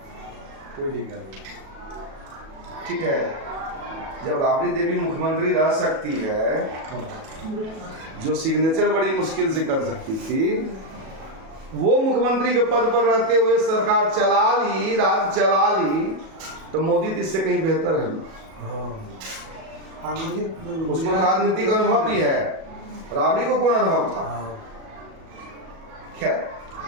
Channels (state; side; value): late; left; 37 ms